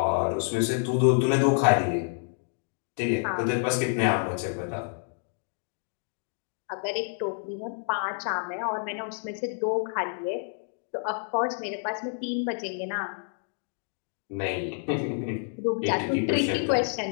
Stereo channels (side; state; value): right; silent; 59 dB below the other